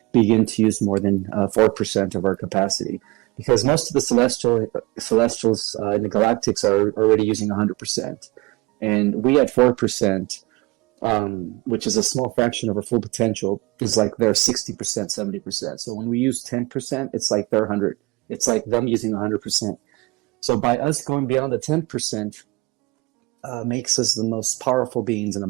begin to use more than 4% of our capacity. Because most of the celestials in the galactics are already using 100%. And we at 4%, which is a small fraction of our full potential, is like they're 60%, 70%. So when we use 10%, it's like they're 100. It's like them using 100%. So by us going beyond the 10%, makes us the most powerful beings in the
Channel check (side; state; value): left; quieter; 23.4 dB